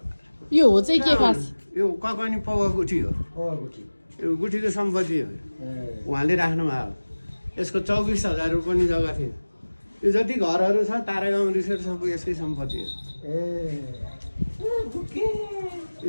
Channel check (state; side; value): inverted; both; correlation -1.00